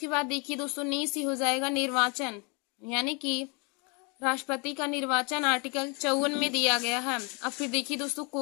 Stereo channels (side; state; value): right; quieter; 32.4 dB